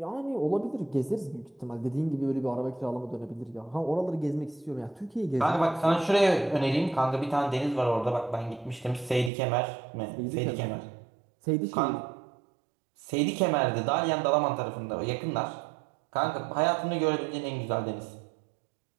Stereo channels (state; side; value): drops out; left; at 9.3 s